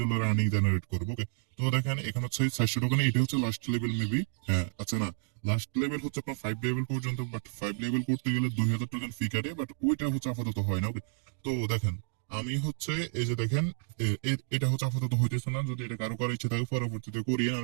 আর্নিং জেনারেট করবো। ওকে, তো দেখেন এখানে হচ্ছে 400 টোকেন, এটা হচ্ছে লাস্ট লেভেল মেবি, হ্যাঁ আচ্ছা না, লাস্ট লেভেল হচ্ছে আপনার 5 লেভেল পর্যন্ত, বাট 5 লেভেল করতে গেলে 2000 টোকেন ফি কাটে, বাট ওইটা হচ্ছে আপাতত হয় না। ওকে, তো দেখেন আমি হচ্ছে এই যে দেখেন এটা হচ্ছে আপাতত হইতেছে না, যদি এটা কারো করার ইচ্ছে থাকে পরবর্তীতে করিয়ে, আর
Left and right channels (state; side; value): silent; left; 57 dB below the other